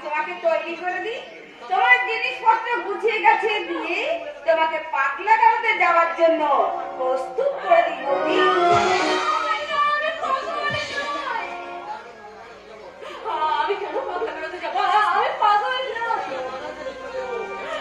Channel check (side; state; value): both; identical; correlation 1.00